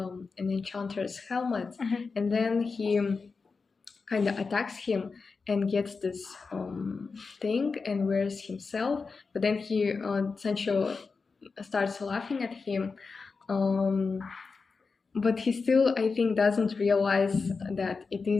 enchanter's helmet, and then he kind of attacks him and gets this thing and wears himself. But then Sancho starts laughing at him. Um, but he still, I think, doesn't realize that it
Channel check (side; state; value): right; quieter; 4.6 dB